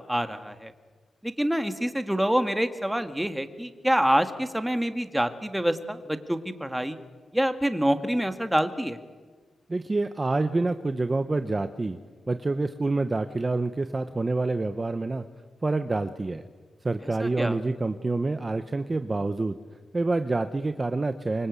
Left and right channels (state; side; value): normal; both; correlation 0.98